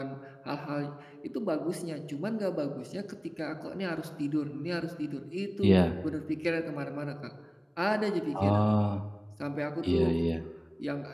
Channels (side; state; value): both; identical; correlation 1.00